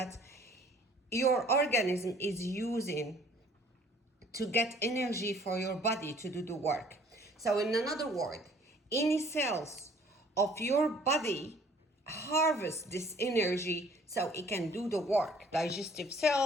your organism is using to get energy for your body to do the work. So in another word, any cells of your body harvest this energy so it can do the work. Digestive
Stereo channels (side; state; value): both; normal; correlation 0.56